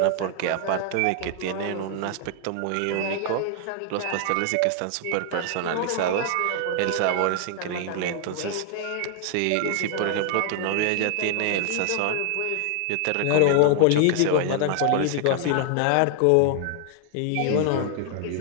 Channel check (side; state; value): both; different; correlation 0.00